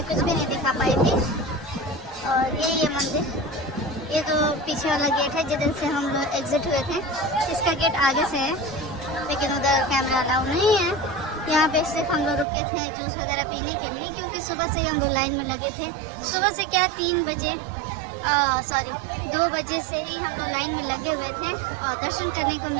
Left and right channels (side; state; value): left; drops out; at 12.5 s